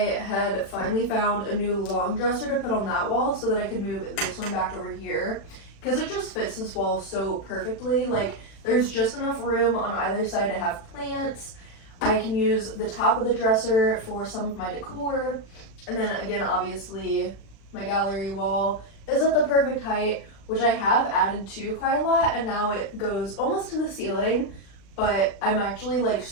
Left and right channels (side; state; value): right; late; 36 ms